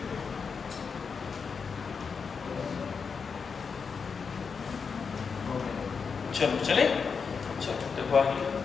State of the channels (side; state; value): right; quieter; 5.6 dB